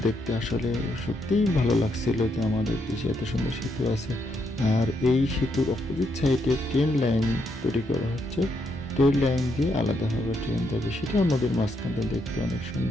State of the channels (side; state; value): both; normal; correlation 0.77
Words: দেখতে আসলে সত্যিই ভালো লাগছিল যে আমাদের দেশে এত সুন্দর সেতু আছে। আর এই সেতুর অপোজিট সাইডে ট্রেন লাইন তৈরি করা হচ্ছে। ট্রেন লাইন দিয়ে আলাদাভাবে ট্রেন যাবে, সেটাও নদীর মাঝখানে দেখতে অনেক